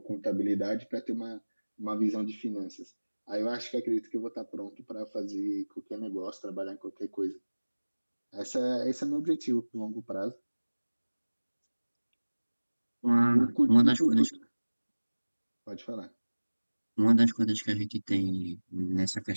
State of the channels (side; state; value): both; inverted; correlation -1.00